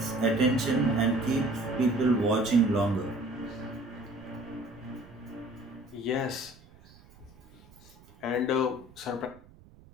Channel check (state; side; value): noise; right; rumble, 25 dB below the sound